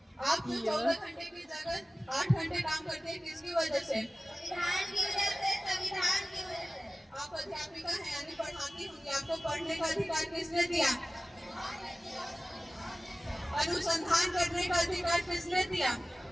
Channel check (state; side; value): normal; both; correlation 0.97